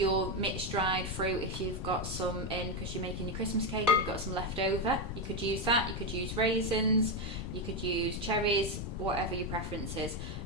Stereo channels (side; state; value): left; noise; rumble, 5 dB below the sound